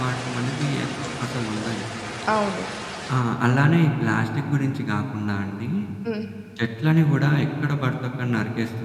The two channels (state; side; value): identical; both; correlation 1.00